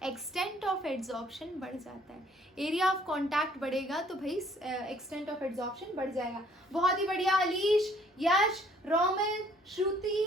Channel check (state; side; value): normal; both; correlation 0.60